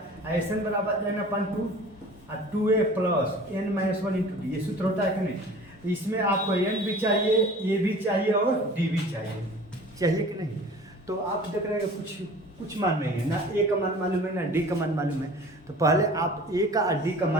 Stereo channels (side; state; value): both; normal; correlation 0.44